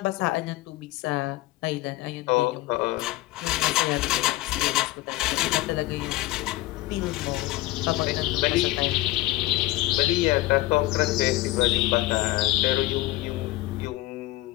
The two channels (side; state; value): right; quieter; 17.9 dB